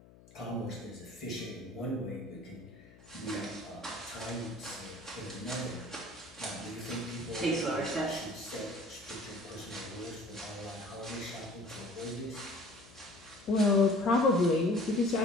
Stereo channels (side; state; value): left; noise; hum, 23 dB below the sound